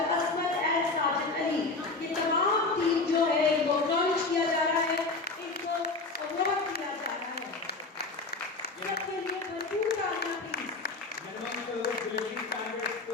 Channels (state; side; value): quieter; right; 3.5 dB